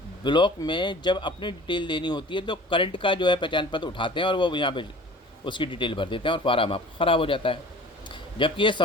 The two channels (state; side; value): normal; both; correlation 0.44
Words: ब्लॉक में जब अपनी डिटेल देनी होती है तो करंट का जो है पहचान पत्र उठाते हैं और वो यहाँ पे उसकी डिटेल भर देते हैं और फार्म आपका ख़राब हो जाता है। जबकि ये